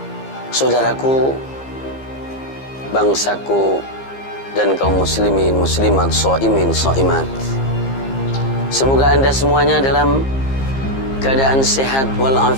Saudaraku, bangsaku, dan kaum muslimin, muslimat, shaimin, shaimat, semoga Anda semuanya dalam keadaan sehat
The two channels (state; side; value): late; right; 15 ms